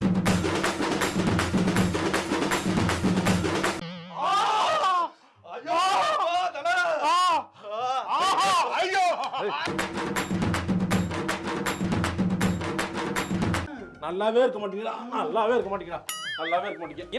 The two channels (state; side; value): identical; both; correlation 1.00